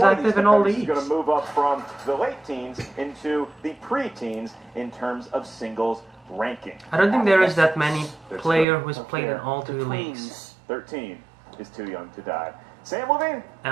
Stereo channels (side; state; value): left; drops out; at 8.7 s